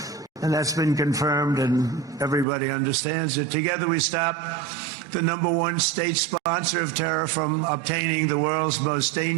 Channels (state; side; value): drops out; left; at 2.5 s